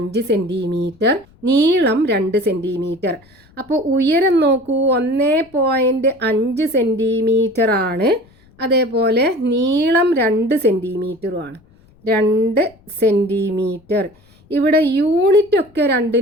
സെൻറ്റിമീറ്റർ, നീളം 2 സെൻറ്റിമീറ്റർ. അപ്പോൾ ഉയരം നോക്കൂ, 1.5 സെൻറ്റിമീറ്റർ ആണ്, അതേപോലെ നീളം 2 സെൻറ്റിമീറ്ററുമാണ്. 2 സെൻറ്റിമീറ്റർ. ഇവിടെ യൂണിറ്റ് ഒക്കെ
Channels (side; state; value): left; noise; rumble, 30 dB below the sound